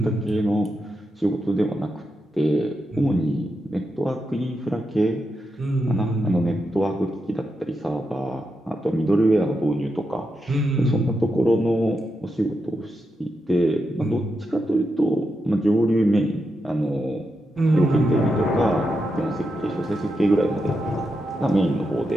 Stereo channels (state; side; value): normal; both; correlation 0.86